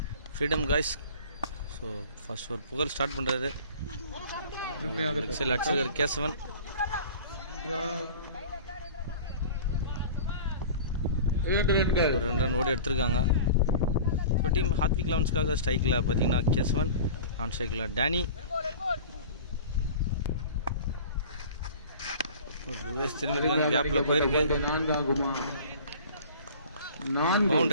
Freedom guys. So first for Pugal start பண்றாரு. XL அடிச்சிருக்காரு கேசவன். ஒரு 2 run ஓடி எடுத்திருக்காங்க. இப்போ டீம் ஹார்திக் லவன்ஸ்க்காக ஸ்ட்ரைக்கில் பார்த்தீங்கன்னா கேசவன், நான் ஸ்ட்ரைக்கில் டேனி. ரிவர்ஸ் திரும்பிருக்காங்க, கேப்பில் போயிருக்கு.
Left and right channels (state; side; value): inverted; both; correlation -0.41